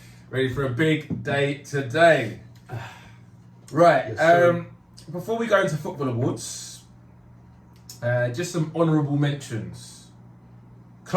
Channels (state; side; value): identical; both; correlation 1.00